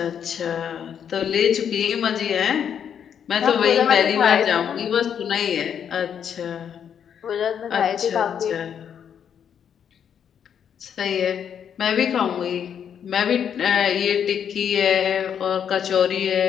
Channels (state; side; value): quieter; right; 8.3 dB